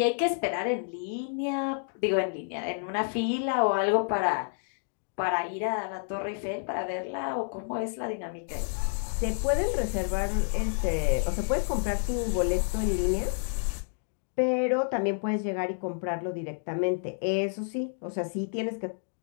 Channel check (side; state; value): right; silent; digital silence